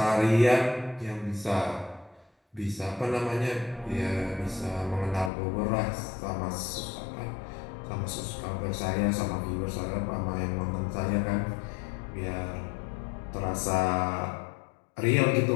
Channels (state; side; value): drops out; right; at 5.3 s